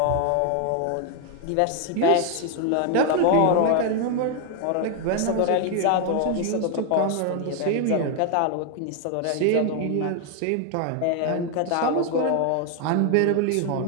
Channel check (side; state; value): both; different; correlation 0.01